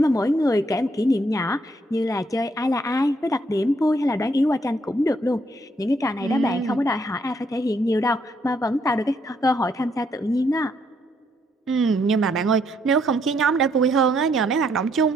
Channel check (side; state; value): both; normal; correlation 0.72